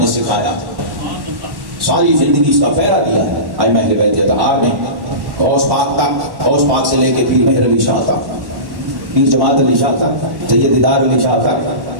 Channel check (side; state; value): left; late; 1.1 ms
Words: سکھایا تھا۔ ساری زندگی اس کا پہرا دیا ہے ائمہ اہل بیت اتحاد نے، غوث پاک تک، غوث پاک سے لے کے پیر مہر علی شاہ تک، پیر جماعت علی شاہ تک، سید دیدار علی شاہ